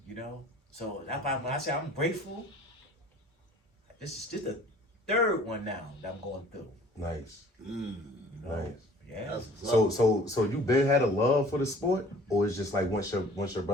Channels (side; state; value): both; normal; correlation 0.50